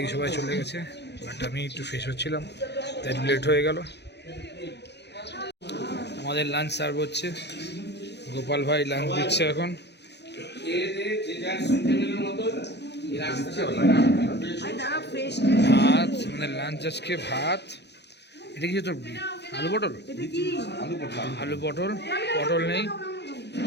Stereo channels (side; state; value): right; late; 0.50 ms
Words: সবাই চলে গেছে বাট আমি একটু ফ্রেশ হচ্ছিলাম তাই লেট হয়ে গেল আমাদের লাঞ্চ সার্ভ হচ্ছে গোপাল ভাই লাঞ্চ দিচ্ছে এখন ভাত আমাদের লাঞ্চ আজকে ভাত এটা কি তোর আলু পটল পটল নেই